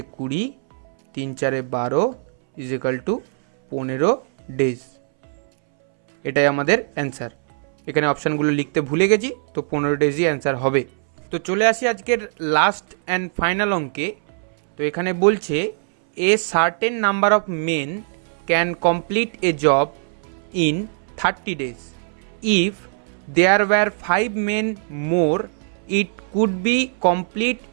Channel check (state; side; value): silent; left; 63 dB below the other